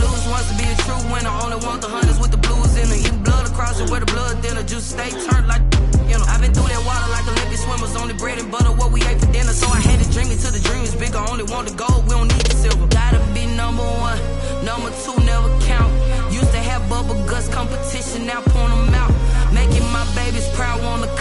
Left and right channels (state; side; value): identical; both; correlation 1.00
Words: once to be a true winner. Only want the hunters with the blues in it. Eating blood across it where the blood dinner. Juice stay turned like, you know. I've been through that water like Olympic swimmers. Only bread and butter what we ate for dinner. So I had to dream it till the dream is bigger. Only want the gold, we don't need the silver. Gotta be number 1, number 2 never count. Used to have bubble guts competition, now point them out. Making my babies proud, wanna